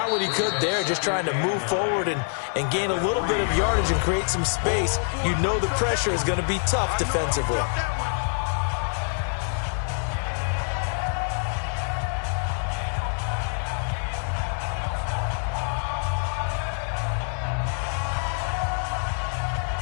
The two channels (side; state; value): right; silent; digital silence